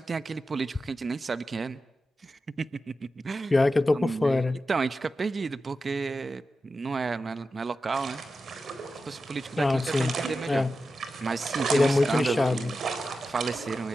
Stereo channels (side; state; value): both; normal; correlation 0.91